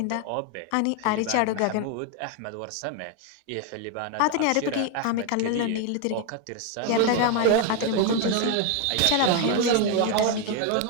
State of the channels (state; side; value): different; both; correlation 0.01